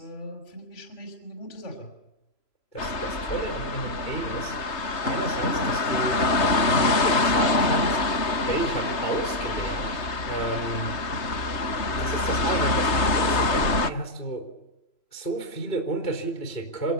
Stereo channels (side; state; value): right; late; 3.2 ms